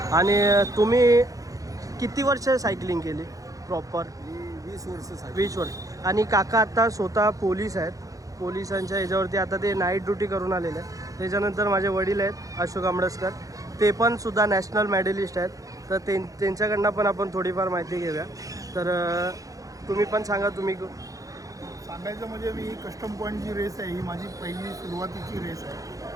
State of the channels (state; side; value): late; left; 0.17 ms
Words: आणि तुम्ही किती वर्ष सायकलिंग केली प्रॉपर? मी 20 वर्ष 20 वर्ष. आणि काका आता स्वतः पोलीस आहेत. पोलिसांच्या ह्याच्यावरती आता ते नाईट ड्युटी करून आलेले आहेत. त्याच्यानंतर माझे वडील आहेत अशोक आंबडसकर, ते पण सुद्धा नॅशनल मेडलिस्ट आहेत. तर त्यांच्याकडनं पण आपण थोडीफार माहिती घेऊया. तर तुम्ही पण सांगा. तुम्ही सांगायचं म्हणजे मी कस्टम पॉईंट जी रेस आहे ही माझी पहिली सुरुवातीची रेस